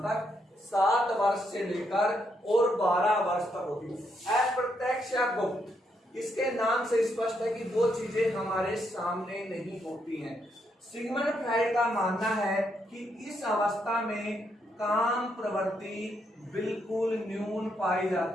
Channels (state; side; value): normal; both; correlation 0.77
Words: तक? 7 वर्ष से लेकर और 12 वर्ष तक होती है। अप्रत्यक्ष या गुप्त, इसके नाम से स्पष्ट है कि वो चीजें हमारे सामने नहीं होती हैं। सिगमंड फ्राइड का मानना है कि इस अवस्था में काम प्रवृत्ति बिल्कुल न्यून पाई